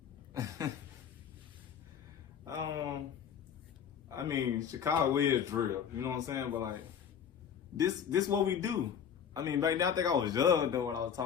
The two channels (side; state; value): right; quieter; 8.1 dB